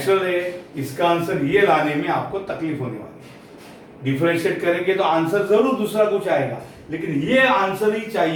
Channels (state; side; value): identical; both; correlation 1.00